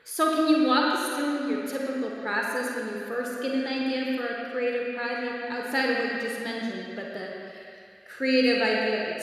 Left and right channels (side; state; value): both; identical; correlation 1.00